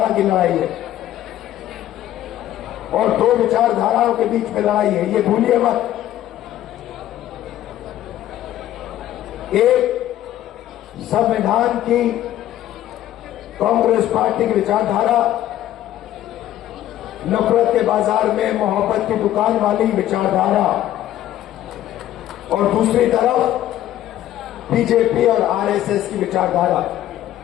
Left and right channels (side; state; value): right; quieter; 12.9 dB